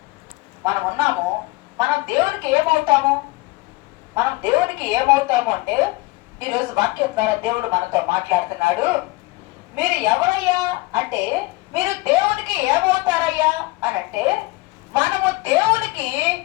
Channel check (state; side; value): quieter; right; 22.0 dB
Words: మనం ఉన్నాము, మనం దేవునికి ఏమవుతాము? మనం దేవునికి ఏమవుతాము అంటే, ఈరోజు వాక్యం ద్వారా దేవుడు మనతో మాట్లాడుతున్నాడు. మీరు ఎవరయ్యా అంటే, మీరు దేవునికి ఏమవుతారయ్యా అని అంటే, మనము దేవునికి